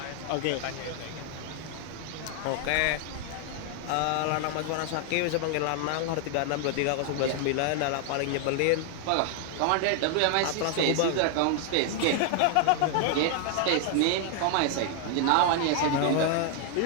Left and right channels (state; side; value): different; both; correlation 0.00